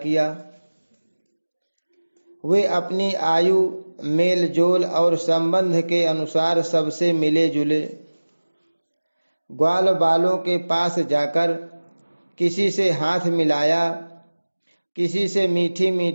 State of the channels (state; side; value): inverted; both; correlation -1.00